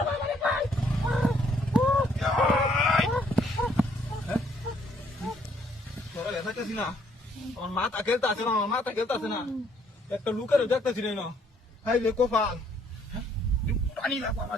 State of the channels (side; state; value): both; normal; correlation 0.66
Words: তোরা লেখাইতেছি না আমার মাথা খেলতে আছে না একটা লুকের দেখতেছি না হাই রে কোফাল পানি লাগবো আমার